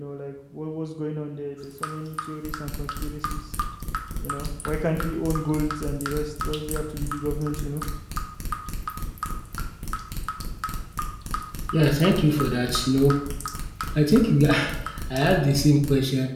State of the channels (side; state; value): both; identical; correlation 1.00